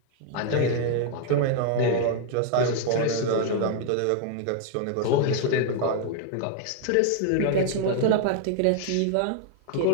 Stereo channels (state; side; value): different; both; correlation 0.00